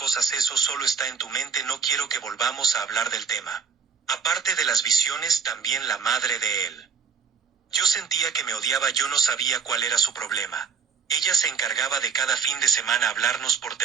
eso solo está en tu mente, no quiero que volvamos a hablar del tema. Aparte de las visiones, también la madre de él. Yo sentía que me odiaba, yo no sabía cuál era su problema. Ella se encargaba de cada fin de semana hablarnos por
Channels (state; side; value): quieter; left; 6.0 dB